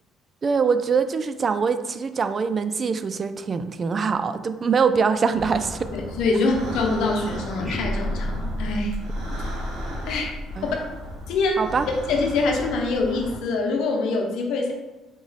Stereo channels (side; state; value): both; normal; correlation 0.71